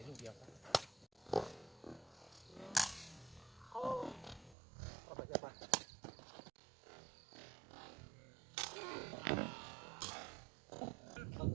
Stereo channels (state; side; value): drops out; left; at 4.5 s